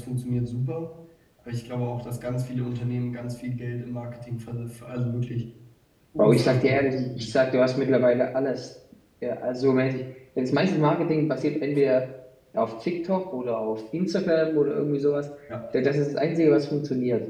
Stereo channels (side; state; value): both; identical; correlation 1.00